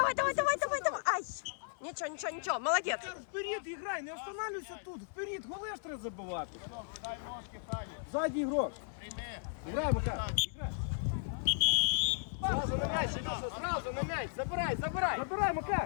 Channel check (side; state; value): right; silent; 54 dB below the other